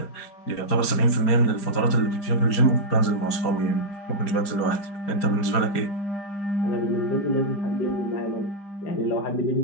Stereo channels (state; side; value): late; right; 5.0 ms